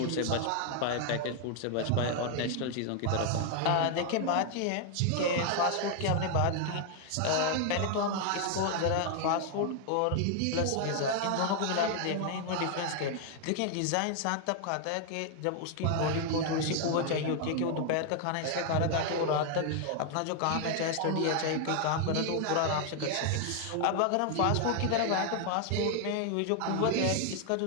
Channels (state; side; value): different; both; correlation 0.00